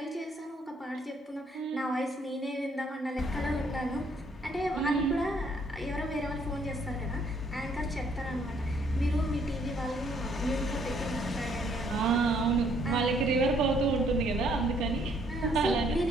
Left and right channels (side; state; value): both; normal; correlation 0.66